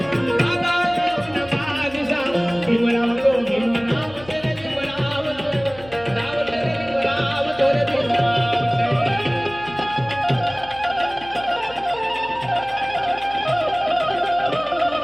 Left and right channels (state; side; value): noise; left; hum, 19 dB below the sound